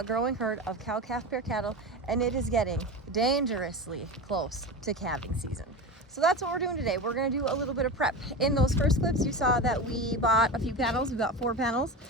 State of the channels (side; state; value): both; normal; correlation 0.25